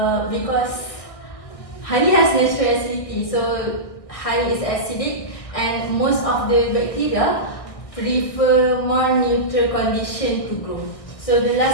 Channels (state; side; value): late; right; 1.6 ms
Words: honey has natural acidity. So honey is acidic, and most of the bacteria prefer more neutral condition to grow. So the